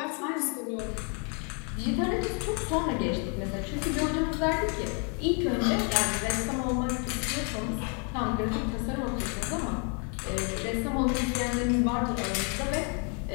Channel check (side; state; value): right; quieter; 37.7 dB